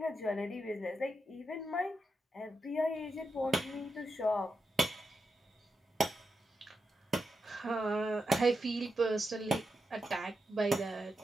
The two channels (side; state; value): both; normal; correlation 0.86